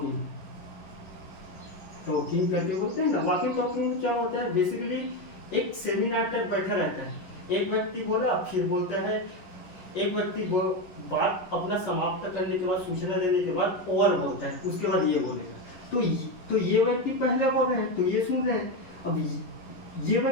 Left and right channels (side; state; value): right; late; 11 ms